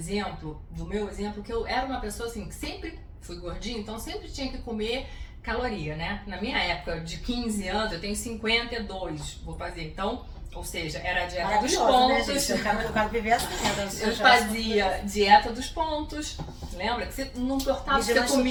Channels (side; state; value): both; identical; correlation 1.00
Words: do meu exemplo, que eu era uma pessoa assim, que sempre fui gordinha, então sempre tinha que comer caloria, né? Na minha época de 15 anos, eu tenho 52, vou fazer, então, ou seja, era a dieta dos pontos. Né, gente? Eu quero viver assim. Eu fazia dieta dos pontos, lembra? Que você não importava o que você